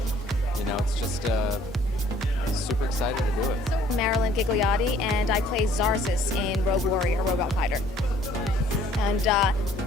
You know, it's just super excited to do it. Marilyn Gigliotti, and I play Zarzis in Rogue Warrior Robot Fighter. And a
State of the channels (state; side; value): normal; both; correlation 0.58